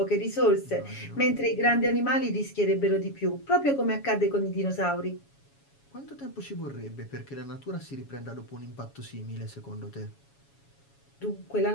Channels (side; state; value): right; late; 7.2 ms